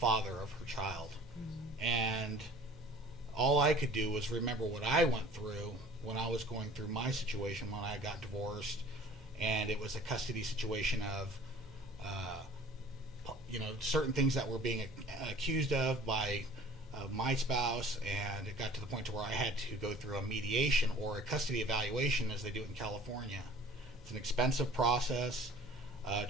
of her child. And all I could do was remember what I went through when I was going through my situation when I got divorced, and it was a custody situation of certain things that were being accused of by my spouse, and it got to the point to where I had to go through a mediation or a custody evaluation as they do it in California. It's an expensive process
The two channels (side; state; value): right; noise; hum, 25 dB below the sound